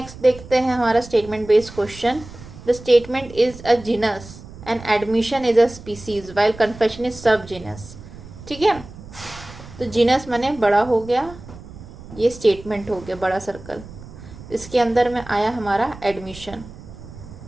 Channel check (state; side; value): noise; right; rumble, 16 dB below the sound